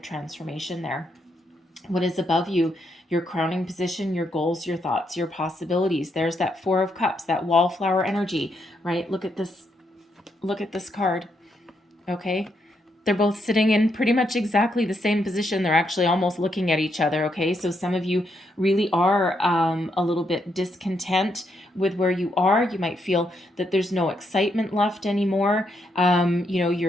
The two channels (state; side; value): normal; both; correlation 0.78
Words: there. What is above you? Your crowning position, your goals, your thoughts, your possibilities. There's that Four of Cups, that wallflower energy, right? Look at this card, okay? They're both sitting in pretty much exactly the same position. They're actually almost looking at each other, okay? So some of you really are a little bit discontent with where you are. You might feel that there's no excitement left anymore. You know,